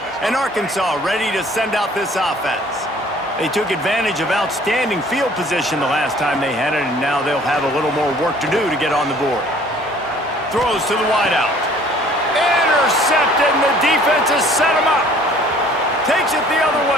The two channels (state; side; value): normal; both; correlation 0.54